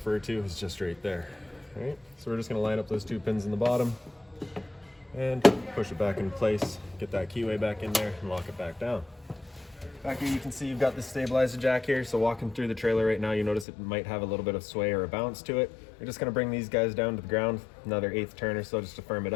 to is just right there. All right, so we're just going to line up those two pins in the bottom and push it back in place, get that keyway back in there and lock it back down. Back here you can see you've got this stabilizer jack here, so walking through the trailer right now you notice it might have a little bit of sway or a bounce to it. You're just going to bring these guys down to the ground, another 1/8 turn or so just to firm it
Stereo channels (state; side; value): drops out; right; at 13.7 s